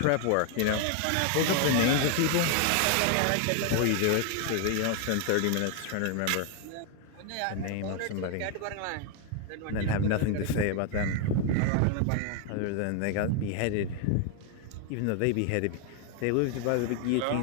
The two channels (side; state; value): both; different; correlation 0.01